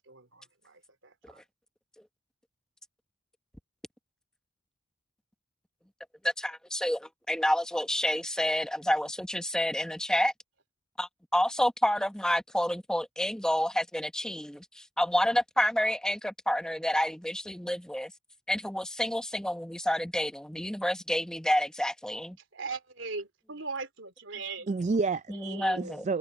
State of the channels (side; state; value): both; normal; correlation 0.88